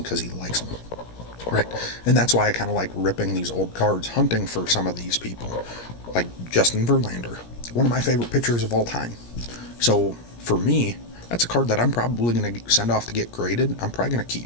because he likes them. Right? And that's why I kind of like ripping these old cards, hunting for some of these people. Like Justin Verlander, one of my favorite pitchers of all time. So for me, that's a card that I'm probably going to send off to get graded. I'm probably going to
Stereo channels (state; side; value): late; right; 17 ms